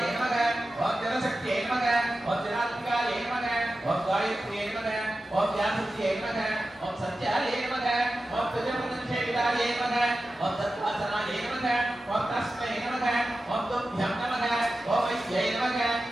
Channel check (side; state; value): both; normal; correlation 0.93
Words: நமக ஓம் ஜனசக்தியே நமக ஓம் ஜனாத்மிகாய நமக ஓம் காயத்ரியே நமக ஓம் வியாசத்யே நமக ஓம் சத்யாய நமக ஓம் துஜமுதன்ஷேவிதாய நமக ஓம் தத்வாசனாய நமக ஓம் தஸ்மை நமக ஓம் துभ्यं நமக ஓம் வைத்யை நமக